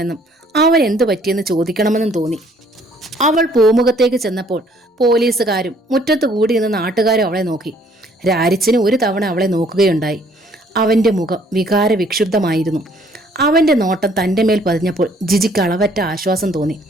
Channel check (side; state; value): both; normal; correlation 0.62